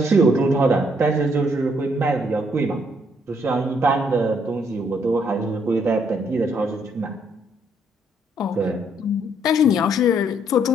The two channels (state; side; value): normal; both; correlation 0.70